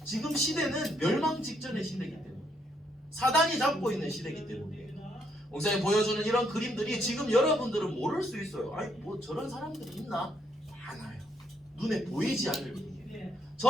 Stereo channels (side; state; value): both; normal; correlation 0.73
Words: 지금 시대는 멸망 직전의 시대이기 때문에, 사단이 잡고 있는 시대이기 때문이에요. 목사님 보여주는 이런 그림들이 지금 여러분들은 모를 수 있어요. 아니 뭐 저런 사람들이 있나? 많아요. 눈에 보이지 않을 뿐이에요.